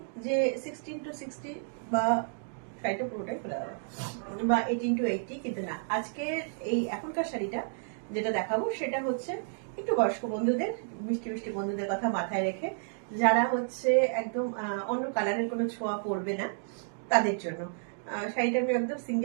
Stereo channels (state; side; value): silent; left; digital silence